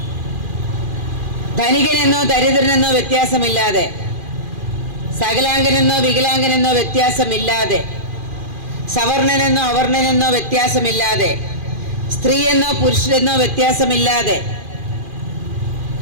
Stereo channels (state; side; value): late; left; 2.4 ms